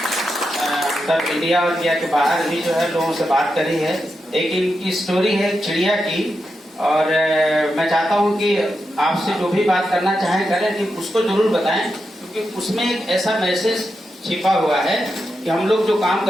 सब इंडिया और इंडिया के बाहर भी जो है लोगों से बात करी है। एक इनकी स्टोरी है चिड़िया की, और मैं चाहता हूं कि आपसे जो भी बात करना चाहें करें, कि उसको जरूर बताएं, क्योंकि उसमें एक ऐसा मैसेज छिपा हुआ है कि हम लोग जो काम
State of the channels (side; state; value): both; normal; correlation 0.87